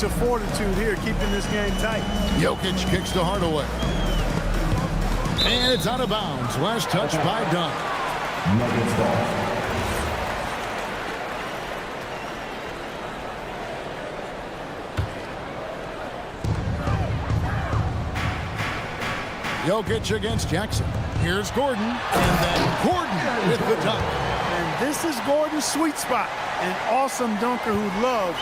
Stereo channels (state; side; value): identical; both; correlation 1.00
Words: of fortitude here, keeping this game tight. Jokic kicks to Hardaway. And it's out of bounds. Last touch by Dunn. Nuggets ball. Jokic against Jackson. Here's Gordon, and then Gordon with the dunk. And this is Gordon's sweet spot. An awesome dunker who loves